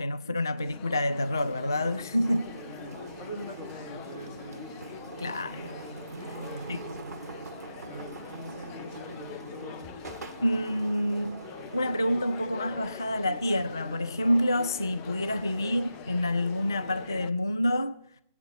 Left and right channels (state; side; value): inverted; both; correlation -0.88